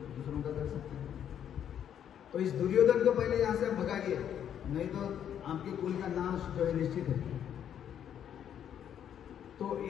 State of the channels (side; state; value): right; quieter; 9.4 dB